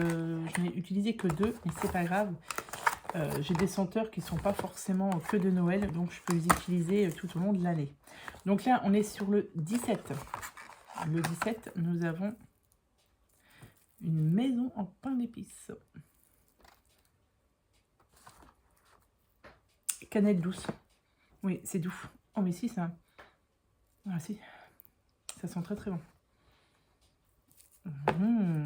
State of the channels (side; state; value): both; identical; correlation 1.00